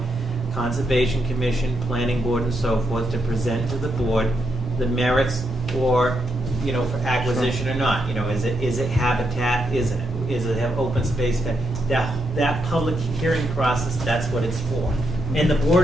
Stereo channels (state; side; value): normal; both; correlation 0.81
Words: Conservation Commission, Planning Board, and so forth to present to the board the merits or, for acquisition or not. Is it habitat? Is it have open space? That public hearing process, that's what it's for. And the